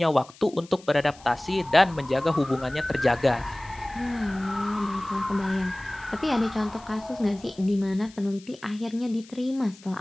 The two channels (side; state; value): left; noise; hiss, 23 dB below the sound